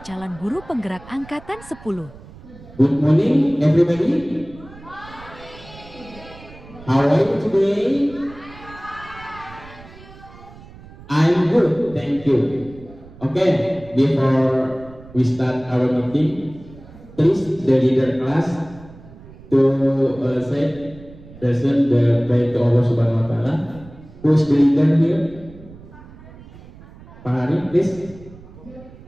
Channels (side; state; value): right; noise; rumble, 20 dB below the sound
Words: calon guru penggerak angkatan 10. Good morning everybody. How are you today? I'm good, thank you. Okay, before we start our meeting, please the leader class to say present the prayer to Allah Subhanahu Wa Taala. Who's the leader here? Pak Hari, please.